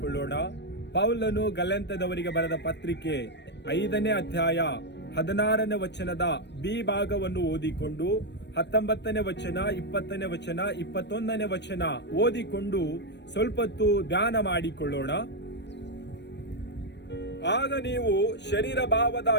ಪೌಲನು ಗಲಾತ್ಯದವರಿಗೆ ಬರೆದ ಪತ್ರಿಕೆ 5ನೇ ಅಧ್ಯಾಯ 16ನೇ ವಚನದ ಬಿ ಭಾಗವನ್ನು ಓದಿಕೊಂಡು 19ನೇ ವಚನ, 20ನೇ ವಚನ, 21ನೇ ವಚನ ಓದಿಕೊಂಡು ಸ್ವಲ್ಪ ಹೊತ್ತು ಧ್ಯಾನ ಮಾಡಿಕೊಳ್ಳೋಣ. ಆಗ ನೀವು ಶರೀರ ಭಾವದ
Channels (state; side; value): late; right; 0.50 ms